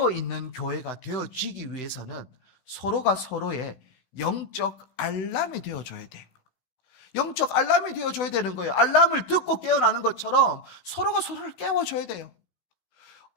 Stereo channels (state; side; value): late; right; 16 ms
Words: 교회가 되어지기 위해서는 서로가 서로의 영적 알람이 되어줘야 돼요. 영적 알람이 되어줘야 되는 거예요. 알람을 듣고 깨어나는 것처럼 서로가 서로를 깨워줘야 돼요.